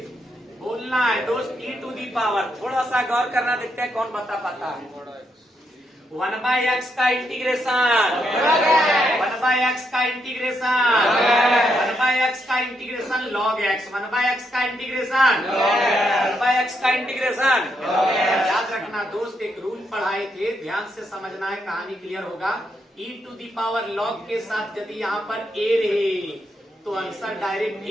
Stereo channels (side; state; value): both; normal; correlation 0.79